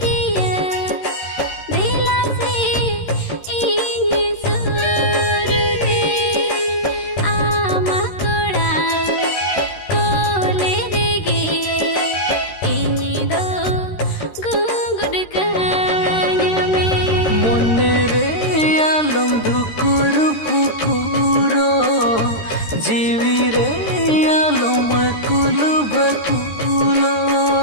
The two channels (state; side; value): late; right; 13 ms